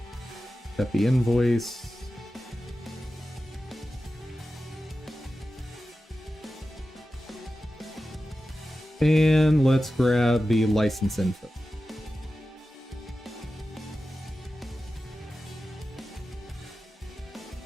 Got the invoice. And let's grab the license info.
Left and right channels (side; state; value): both; normal; correlation 0.93